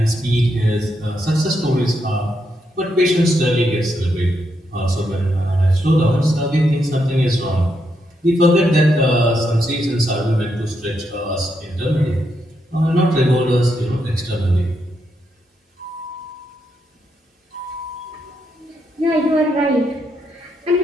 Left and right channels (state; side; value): normal; both; correlation 0.80